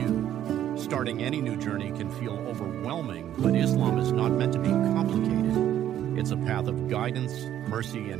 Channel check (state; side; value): quieter; left; 11.3 dB